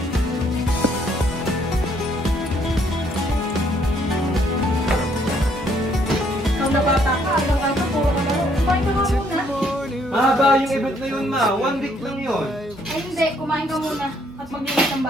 Ikaw na bata ka, araw-araw puro ka laro. Kumain ka nga muna. Mahaba yung event na yun, ma. 1 week lang yun. Ay hindi, kumain ka muna at maglinis ng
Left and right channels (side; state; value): both; normal; correlation 0.67